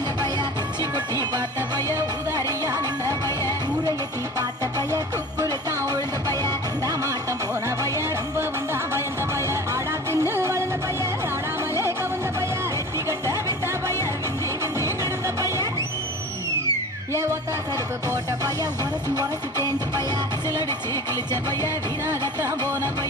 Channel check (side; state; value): both; normal; correlation 0.38